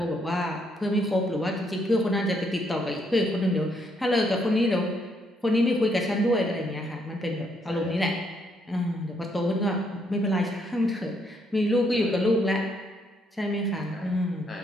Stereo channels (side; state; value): both; normal; correlation 0.73